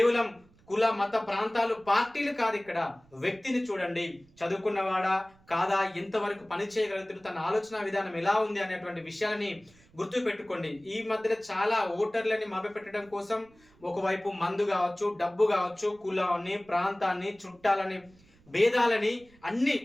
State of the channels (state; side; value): noise; right; rumble, 29 dB below the sound